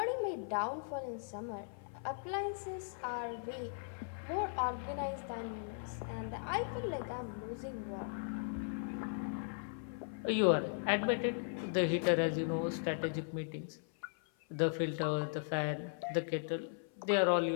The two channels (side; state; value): right; silent; 52 dB below the other